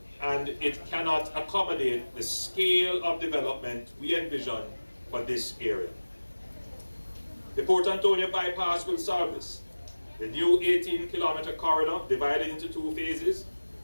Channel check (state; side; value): inverted; both; correlation -1.00